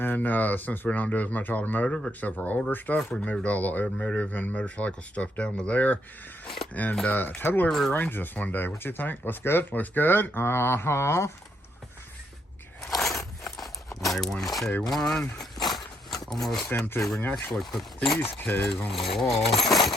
since we don't do as much automotive except for older stuff, we moved all the automotive and motorcycle stuff down to there, and totally rearranged this one day. What you think? Looks good? Looks good? Uh-huh. Okay. A1, K1. Almost empty. We can actually put these K's on the wall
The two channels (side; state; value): both; normal; correlation 0.75